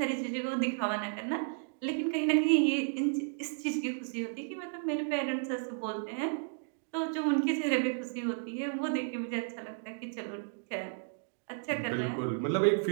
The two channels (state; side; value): silent; left; digital silence